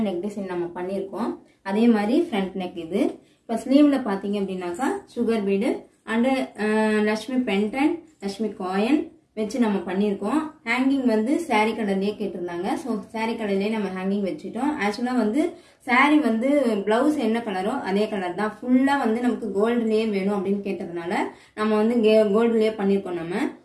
நெக் டிசைன் நம்ம பண்ணியிருக்கோம். அதே மாதிரி ஃப்ரண்ட் நெக் இது. இப்போ ஸ்லீவில் பார்த்தீங்க அப்படின்னாக்கா sugar bead and Lakshmi pendant, Lakshmi coin வச்சு நம்ம பண்ணியிருக்கோம். ஹேங்கிங் வந்து சாரீ கலர்லேயே கேட்டிருந்தாங்க. ஸோ சாரீ கலர்லேயே நம்ம ஹேங்கிங் வச்சுட்டோம். ஆக்சுவலாக வந்து சாரீ வந்து ப்ளவுஸ் என்ன கலரோ அதே கலர் தான். ஃபுல்லாக வந்து நமக்கு கோல்டுலேயே வேணும் அப்படின்னு கேட்டதுனால நம்ம வந்து கோல்டுலேயே பண்ணியிருக்கோம் நம்ம.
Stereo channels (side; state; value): both; identical; correlation 1.00